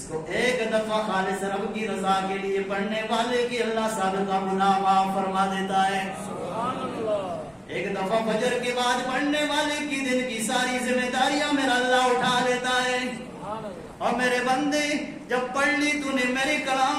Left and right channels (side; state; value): both; identical; correlation 1.00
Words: کو ایک دفعہ خالص رب کی رضا کے لیے پڑھنے والے کی اللہ سابقہ گناہ معاف فرما دیتا ہے. سبحان اللہ. ایک دفعہ فجر کے بعد پڑھنے والے کی دن کی ساری ذمہ داریاں میرا اللہ اٹھا لیتا ہے. اور میرے بندے جب پڑھ لی تو نے میرے کلام